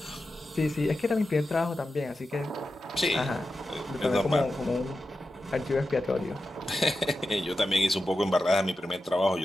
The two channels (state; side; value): normal; both; correlation 0.91